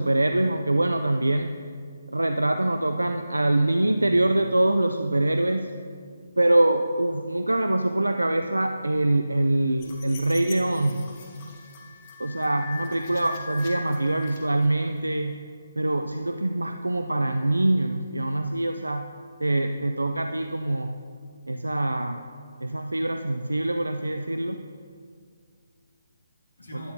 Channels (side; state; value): both; inverted; correlation -0.96